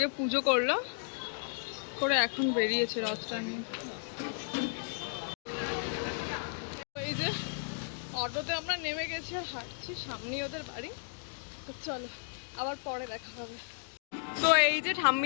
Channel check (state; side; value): silent; right; digital silence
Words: পুজো করলো করে এখন বেরিয়েছে রথটা নিয়ে। এই যে অটোতে আমরা নেমে গেছি আর হাঁটছি, সামনেই ওদের বাড়ি। তো চলো আবার পরে দেখা হবে। তো এই যে